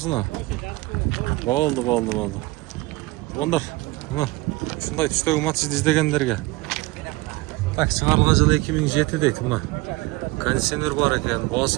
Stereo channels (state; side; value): quieter; left; 21.5 dB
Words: Болды. Ондар, сындай түстегі Матисді іздегендерге. Так, шығарылған жылы 2007 дейді мұна. Кондиционер бар екен,